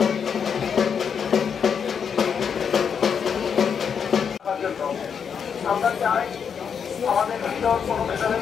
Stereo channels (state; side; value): quieter; right; 7.0 dB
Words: আমরা চাই আমাদের ভিতর কোনো মেধাবী